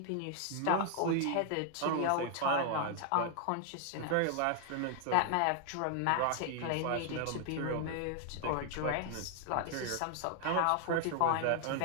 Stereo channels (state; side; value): different; both; correlation 0.00